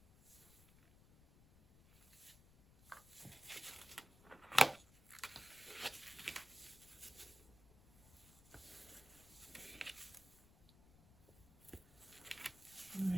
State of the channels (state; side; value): noise; left; rumble, 23 dB below the sound